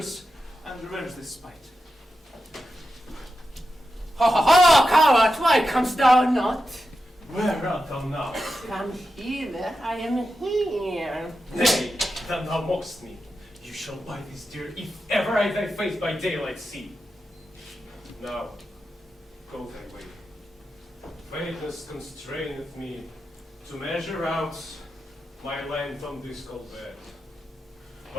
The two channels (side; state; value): both; normal; correlation 0.90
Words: and revenge this spite. Ho ho ho, coward, why comest thou not? Where art thou now? Come hither, I am here. Nay, then thou mockst me. You shall buy this dear if ever I thy face by daylight see. Now, go thy way. Faintness constraineth me to measure out my length on this cold bed.